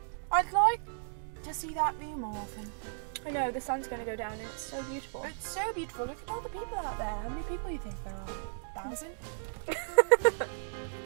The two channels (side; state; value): left; silent; digital silence